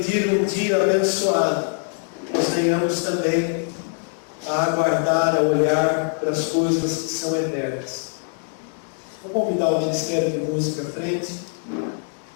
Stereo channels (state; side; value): silent; right; 57 dB below the other